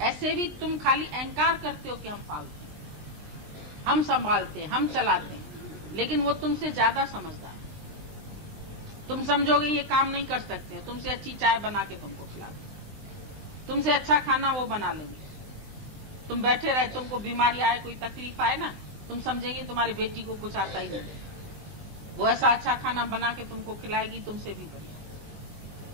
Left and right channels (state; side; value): late; left; 19 ms